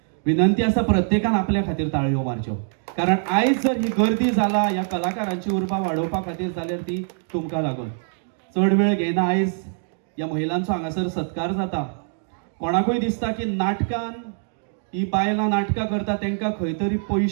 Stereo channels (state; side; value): silent; left; digital silence